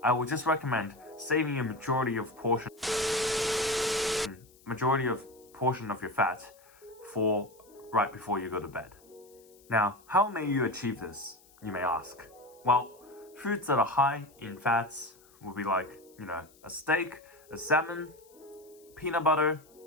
I would just recommend saving a majority of portion of your fat for right before you go to bed. Now, how may you achieve this, you may ask? Well, foods that are high in fats will be like, you know, a steak, a salmon, peanut butter,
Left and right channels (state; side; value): noise; left; hiss, 28 dB below the sound